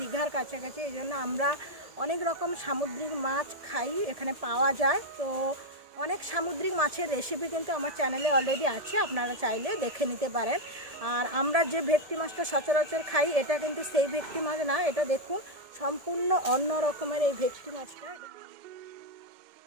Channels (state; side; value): late; left; 1.7 ms